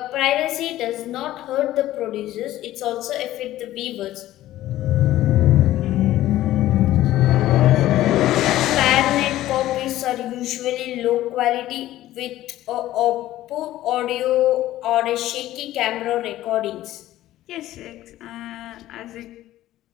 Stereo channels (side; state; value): right; quieter; 14.6 dB